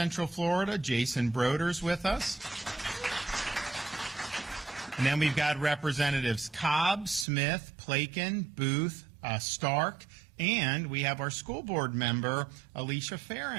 Florida, Jason Broders, with us. And then we've got Representatives Cobb, Smith, Plakin, Booth, Stark, and we have our school board member, Alicia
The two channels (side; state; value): left; drops out; at 7.2 s